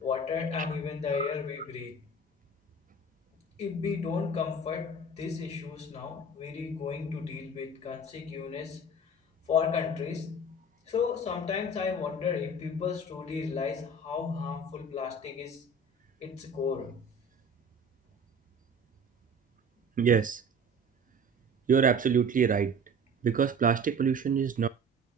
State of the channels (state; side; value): normal; both; correlation 0.41